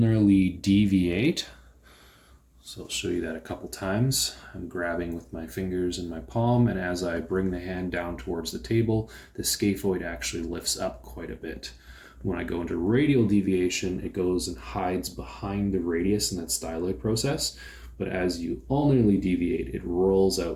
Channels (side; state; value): both; identical; correlation 1.00